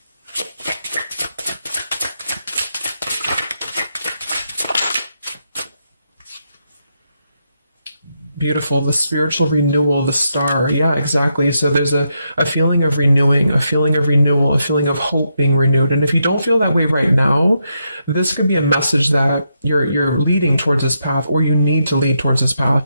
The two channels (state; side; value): inverted; both; correlation -0.82